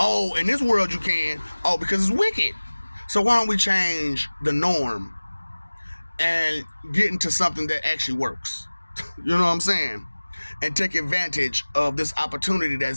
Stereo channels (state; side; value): inverted; both; correlation -1.00